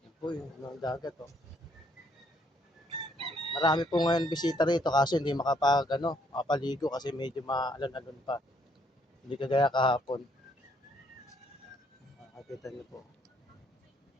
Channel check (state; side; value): normal; both; correlation 0.69